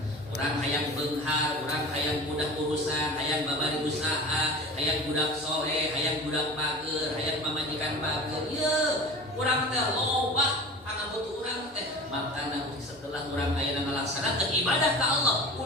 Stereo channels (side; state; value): both; normal; correlation 0.36